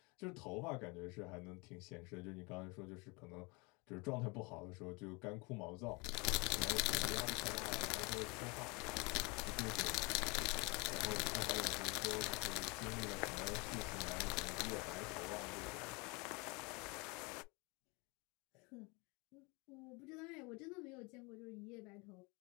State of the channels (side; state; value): right; quieter; 28.5 dB